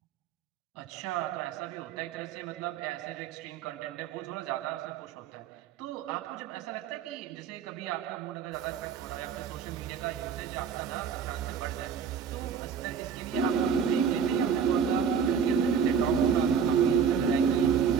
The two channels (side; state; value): left; quieter; 6.9 dB